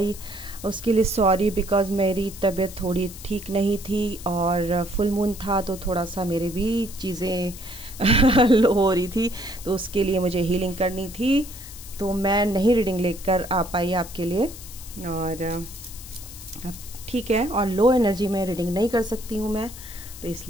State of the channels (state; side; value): noise; left; hiss, 15 dB below the sound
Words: उसके लिए सॉरी, बिकॉज़ मेरी तबीयत थोड़ी ठीक नहीं थी और फुल मून था तो थोड़ा सा मेरे भी चीज़ें लो हो रही थी, तो उसके लिए मुझे हीलिंग करनी थी, तो मैं नहीं रीडिंग लेकर आ पाई आपके लिए। और अब ठीक है, और लो एनर्जी में रीडिंग नहीं कर सकती हूँ मैं, तो